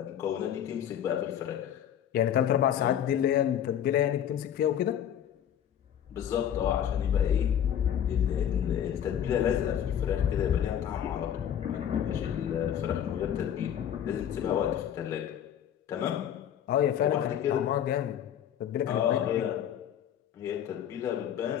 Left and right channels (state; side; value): quieter; right; 9.7 dB